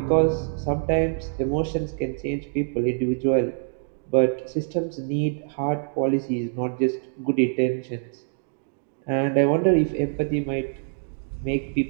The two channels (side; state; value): left; silent; digital silence